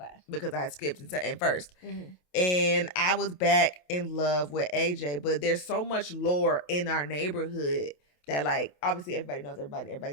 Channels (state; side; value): late; right; 28 ms